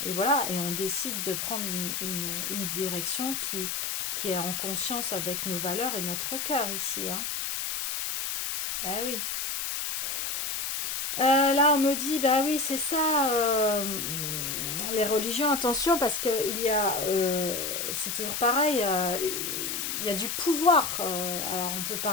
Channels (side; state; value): left; noise; hiss, 2 dB below the sound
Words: et voilà, et on décide de prendre une direction qui est en conscience avec nos valeurs et notre cœur ici, hein. Ah oui. Là, on me dit, bah oui, c'est ça, les religions, attention, parce que c'est toujours pareil, il y a du pouvoir. Alors, on peut